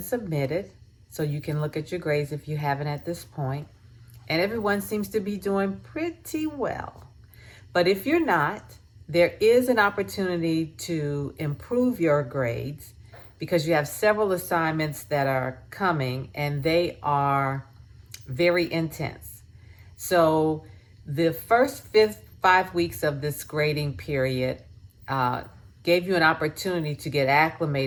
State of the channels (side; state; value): both; identical; correlation 1.00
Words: so you can look at your grades if you haven't at this point. And everyone seems to be doing pretty well. But if you're not, there is an opportunity to improve your grades because you have several assignments that are coming and they are very intense. So the first 5 weeks of this grading period uh, gave you an opportunity to get